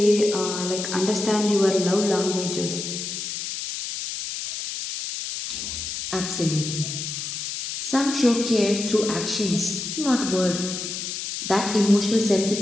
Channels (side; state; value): left; noise; hiss, 5 dB below the sound